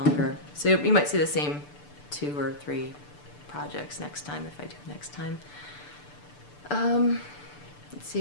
So you might see the same 2 or 3 projects next time if I do next time. Let's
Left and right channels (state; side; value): late; right; 6.8 ms